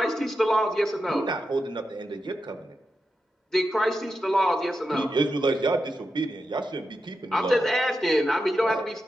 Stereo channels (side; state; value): both; normal; correlation 0.88